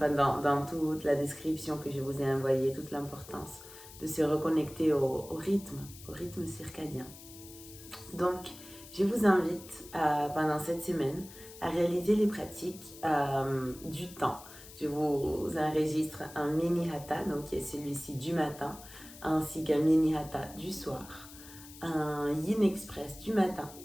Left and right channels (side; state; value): left; noise; hiss, 17 dB below the sound